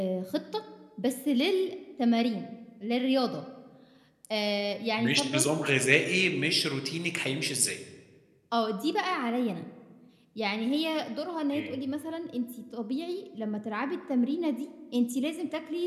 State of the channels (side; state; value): both; identical; correlation 1.00